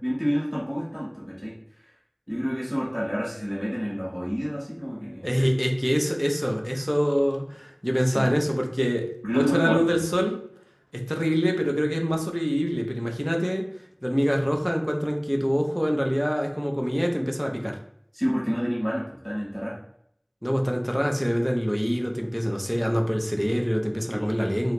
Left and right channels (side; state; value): both; identical; correlation 1.00